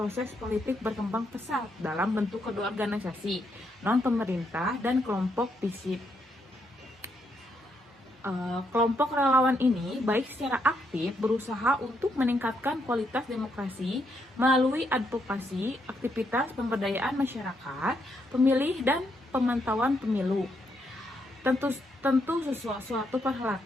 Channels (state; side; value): normal; both; correlation 0.77